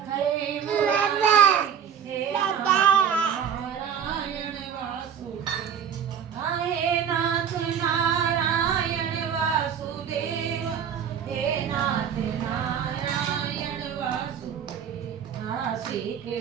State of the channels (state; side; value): quieter; left; 8.2 dB